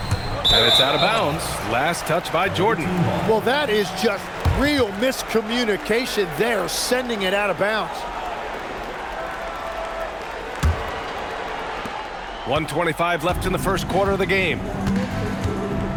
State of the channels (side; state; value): both; identical; correlation 1.00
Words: And it's out of bounds. Last touch by Jordan. Well, that is just real miscommunication there, sending it out of bounds. 1:25 left in the first quarter of the game.